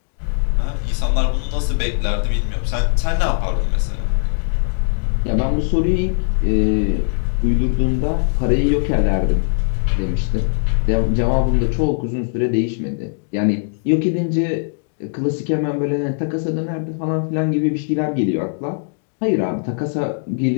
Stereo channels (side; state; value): right; silent; digital silence